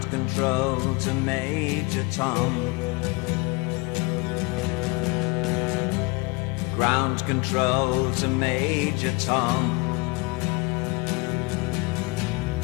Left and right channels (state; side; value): quieter; right; 26.8 dB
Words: control to Major Tom. Ground control to Major Tom.